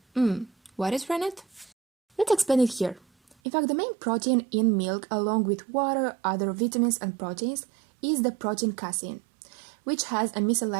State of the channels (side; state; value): left; drops out; at 3.4 s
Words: What is rennet? Let's explain it here. In fact, the main protein in milk, along with water, other vitamins and proteins, is the protein casein, which has a